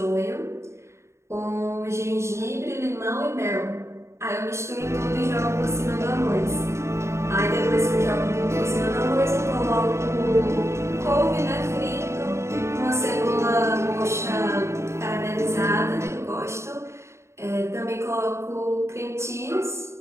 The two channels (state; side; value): late; left; 0.13 ms